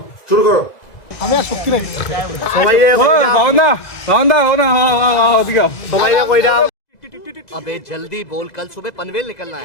শুরু করো। আমি আর শক্তি নাই সবাই সবাই কইরা अबे जल्दी बोल, कल सुबह पनवेल निकलना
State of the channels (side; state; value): right; late; 2.0 ms